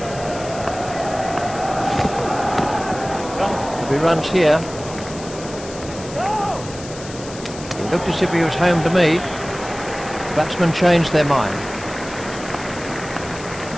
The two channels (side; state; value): left; noise; hiss, 15 dB below the sound